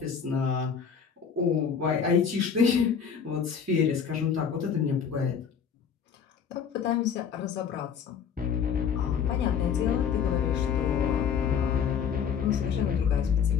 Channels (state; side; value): quieter; right; 7.1 dB